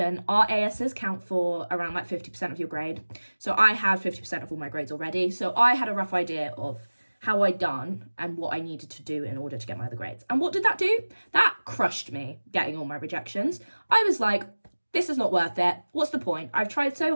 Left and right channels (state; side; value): inverted; both; correlation -1.00